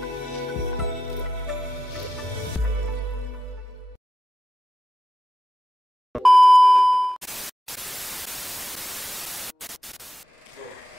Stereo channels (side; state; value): both; normal; correlation 0.90